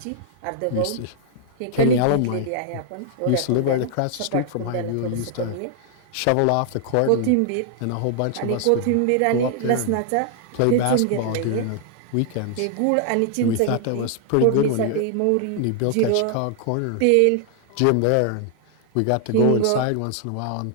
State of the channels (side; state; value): both; different; correlation 0.00